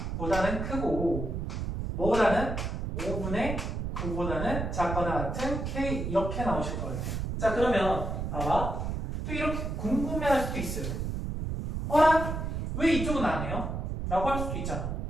크고 뭐보다는 5분의 9보다는 작거나 같은 K 이렇게 나오실 것 같아요. 자 그러면 봐봐. 또 이렇게 궁금해할 수도 있어요. 왜 이쪽은 안 해요? 라고 할 수도 있잖아.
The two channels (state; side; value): noise; right; rumble, 3 dB below the sound